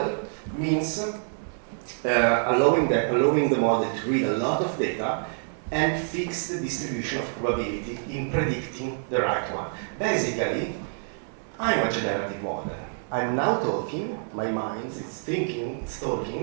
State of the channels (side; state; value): left; silent; 58 dB below the other